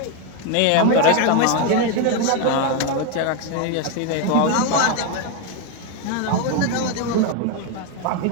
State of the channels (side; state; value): both; different; correlation 0.01